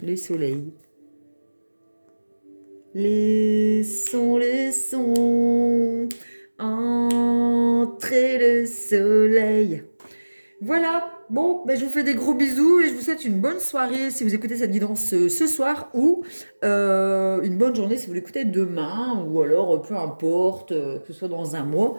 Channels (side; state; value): both; inverted; correlation -1.00